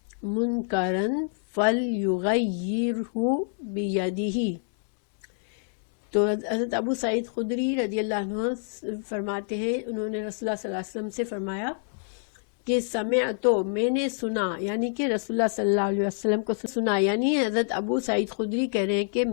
منکرا فلیغیرہ بیدہ۔ تو حضرت ابو سعید خدری رضی اللہ عنہ فرماتے ہیں، انہوں نے رسول اللہ صلی اللہ علیہ وسلم سے فرمایا کہ سمعتو، میں نے سنا، یعنی کہ رسول اللہ صلی اللہ علیہ وسلم کو سنا، یعنی حضرت ابو سعید خدری کہہ رہے ہیں کہ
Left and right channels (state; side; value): silent; right; digital silence